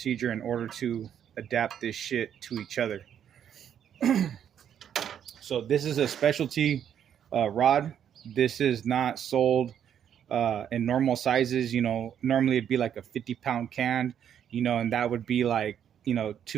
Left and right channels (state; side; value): quieter; left; 9.2 dB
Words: in order to adapt this shit to each other. So this is a specialty rod. This is not sold in normal sizes. You know, normally it'd be like a 50-pound can, you know, and that would be like, you know,